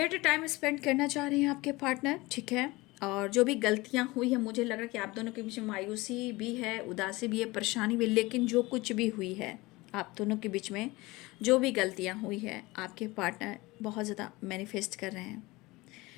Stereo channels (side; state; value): right; quieter; 21.7 dB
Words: टाइम स्पेंड करना चाह रहे हैं आपके पार्टनर, ठीक है। और जो भी गलतियाँ हुई है, मुझे लग रहा है कि आप दोनों के बीच में मायूसी भी है, उदासी भी है, परेशानी भी, लेकिन जो कुछ भी हुई है आप दोनों के बीच में, जो भी गलतियाँ हुई है, आपके पार्टनर बहुत ज़्यादा मैनिफेस्ट कर रहे हैं,